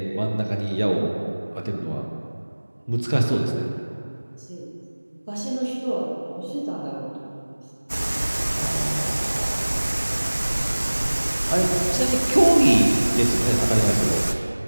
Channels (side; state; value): both; inverted; correlation -1.00